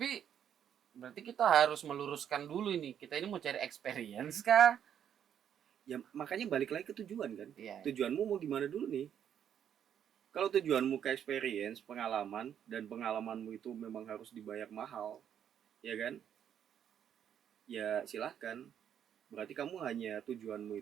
berarti kita harus meluruskan dulu ini. Kita ini mau cari experience kah? Ya makanya balik lagi ke tujuan kan. Iya. Tujuanmu mau gimana dulu nih? Kalau tujuanmu ke experience, pengalaman, dan pengalamanmu itu memang harus dibayar mahal, ya kan? Ya silahkan. Berarti kamu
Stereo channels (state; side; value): quieter; left; 9.2 dB